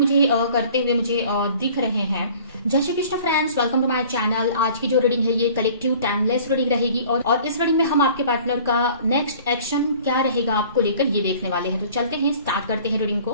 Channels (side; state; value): both; inverted; correlation -0.49